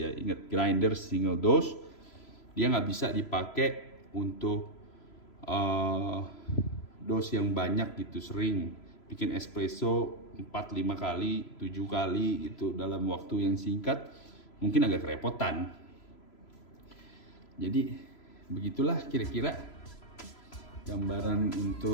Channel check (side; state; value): right; late; 3.0 ms